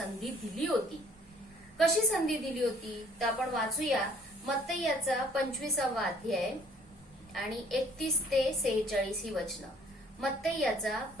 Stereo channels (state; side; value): normal; both; correlation 0.57